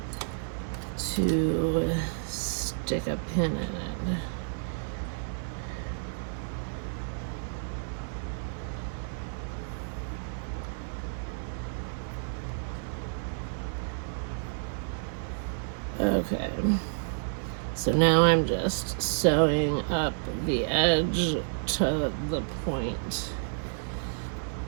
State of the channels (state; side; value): silent; left; digital silence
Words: to stick a pin in it. Okay, so now I'm just sewing up the edge to the point